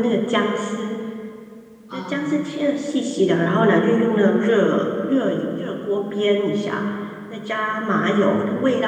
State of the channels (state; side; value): identical; both; correlation 1.00